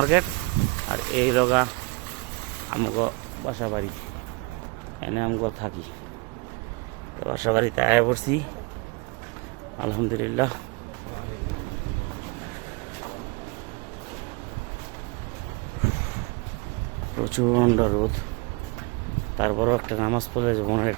আর এই লোকা আমাকে বাসা বাড়ি, এনে আমাকে থাকি। বাসা বাড়িতে আয় পড়ছি, আলহামদুলিল্লাহ। প্রচণ্ড রোদ, তারপরেও একটা নামাজ পড়লে যে মনের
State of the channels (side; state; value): left; quieter; 27.5 dB